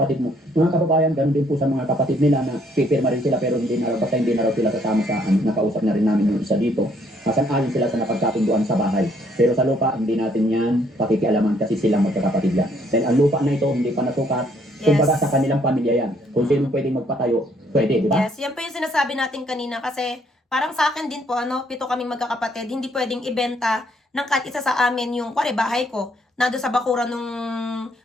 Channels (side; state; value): both; normal; correlation 0.67